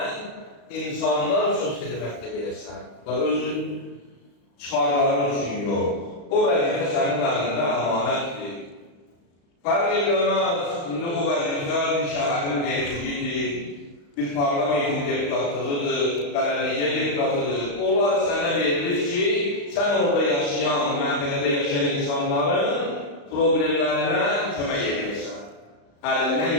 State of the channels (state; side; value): late; right; 35 ms